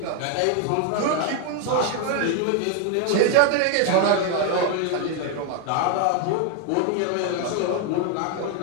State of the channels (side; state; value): both; different; correlation 0.00